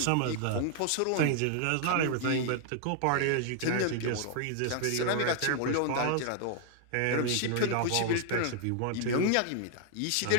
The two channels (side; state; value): both; different; correlation 0.00